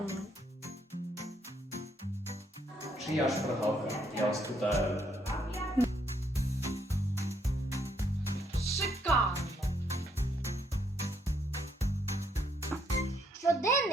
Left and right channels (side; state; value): both; normal; correlation 0.72